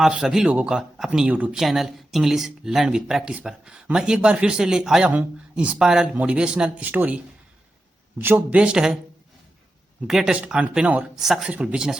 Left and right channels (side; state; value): both; normal; correlation 0.90